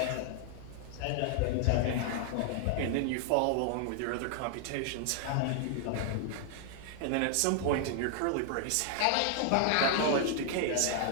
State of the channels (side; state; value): both; different; correlation 0.00